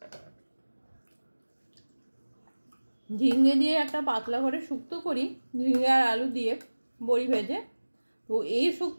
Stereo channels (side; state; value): both; inverted; correlation -1.00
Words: ঝিঙে দিয়ে একটা পাতলা করে শুক্তো করি, ঝিঙে আর আলু দিয়ে বড়ি ভেজে, তো এই